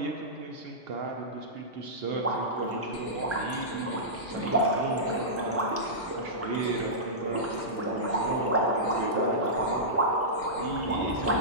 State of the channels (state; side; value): normal; both; correlation -0.15